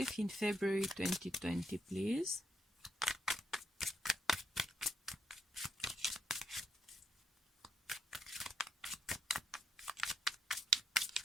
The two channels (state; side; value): normal; both; correlation 0.75